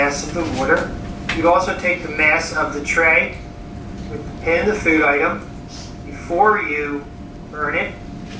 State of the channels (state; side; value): identical; both; correlation 1.00